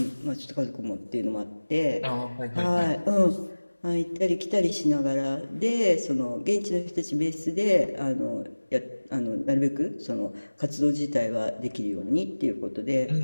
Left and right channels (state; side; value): inverted; both; correlation -1.00